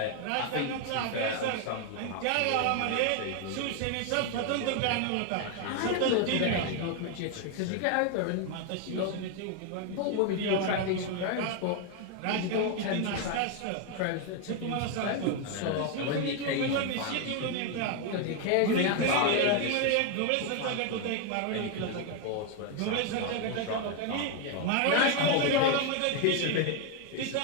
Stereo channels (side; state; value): both; different; correlation 0.01